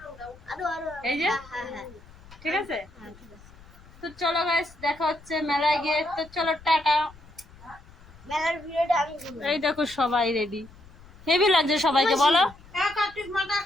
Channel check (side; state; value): left; noise; rumble, 23 dB below the sound